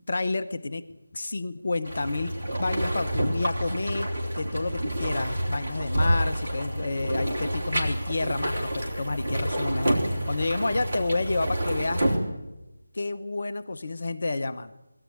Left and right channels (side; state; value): both; inverted; correlation -0.95